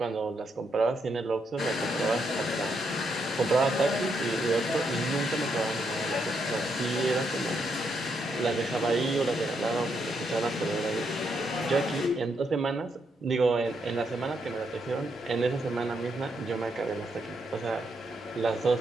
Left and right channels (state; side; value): normal; both; correlation 0.78